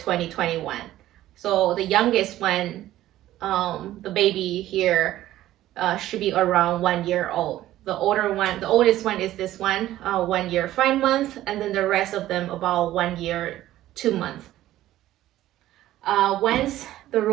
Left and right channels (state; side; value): quieter; left; 14.3 dB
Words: So the youngest one, the baby here, should be around 1 year old. The oldest one is this one, 1 year 5 months, and then the rest of them about 1 year 2 months. Once the